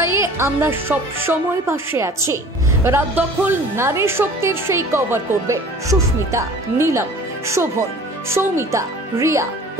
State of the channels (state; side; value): normal; both; correlation 0.46